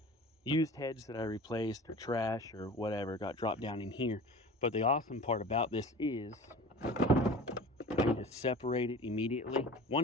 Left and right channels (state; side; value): normal; both; correlation 0.39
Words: used heads that I replaced or trash or whatever got dropped down in here. But the awesome part about this is I can just separate it immediately,